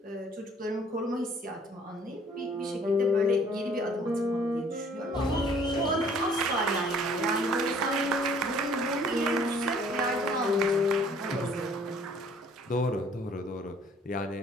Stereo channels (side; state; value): both; normal; correlation 0.57